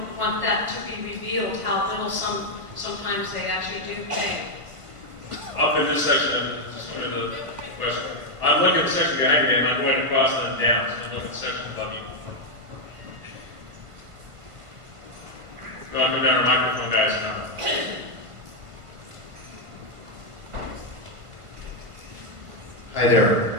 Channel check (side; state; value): left; late; 1.4 ms